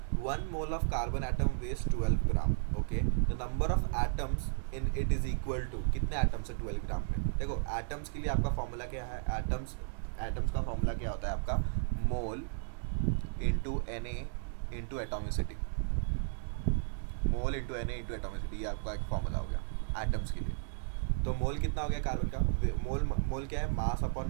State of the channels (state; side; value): silent; left; digital silence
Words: 1 mole of carbon atom weighs 12 gram. Okay, the number of atoms in it is equal to, कितने एटम्स है 12 ग्राम में। देखो एटम्स के लिए आपका फॉर्मूला क्या है, एटम्स का फॉर्मूला क्या होता है आपका, मोल इंटू Na इंटू एटोमिसिटी। मोल इंटू Na इंटू एटोमिसिटी, ये आपका एक फॉर्मूला हो गया एटम्स के लिए। तो मोल कितना हो गया कार्बन का, मोल क्या है, mass upon